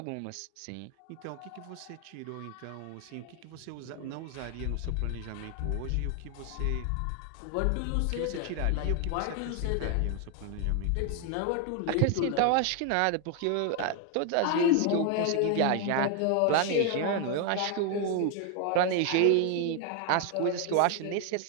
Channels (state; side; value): different; both; correlation 0.00